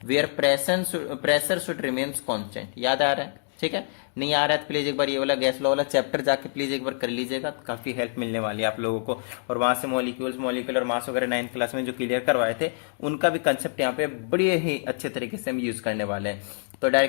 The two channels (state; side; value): silent; right; digital silence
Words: where pressure should remains constant. याद आ रहा है, ठीक है। नहीं आ रहा है तो प्लीज एक बार ये वाला गैस लॉ वाला चैप्टर जाके प्लीज एक बार कर लीजिएगा, तो काफी हेल्प मिलने वाली है आप लोगों को। और वहां से मॉलिक्यूल्स, मॉलिक्यूलर मास वगैरह 9th क्लास में जो क्लियर करवाए थे, उनका भी कंसेप्ट यहाँ पे बड़े ही अच्छे तरीके से हम यूज करने वाले हैं। तो